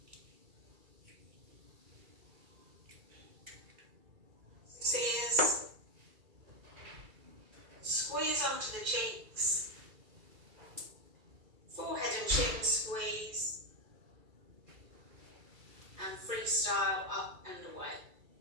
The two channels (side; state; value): left; late; 2.3 ms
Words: Ears, squeeze onto the cheeks, forehead and chin squeeze, and freestyle up and away.